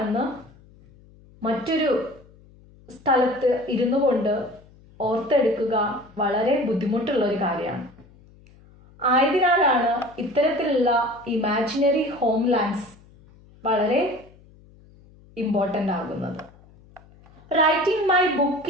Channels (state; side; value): noise; left; hum, 26 dB below the sound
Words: മറ്റൊരു സ്ഥലത്ത് ഇരുന്നു കൊണ്ട് ഓർത്തെടുക്കുക വളരെ ബുദ്ധിമുട്ടുള്ള ഒരു കാര്യമാണ്. ആയതിനാലാണ് ഇത്തരത്തിലുള്ള ഇമാജിനറി ഹോംലാൻഡ്സ് വളരെ ഇമ്പോർട്ടൻ്റ് ആകുന്നത്. Writing my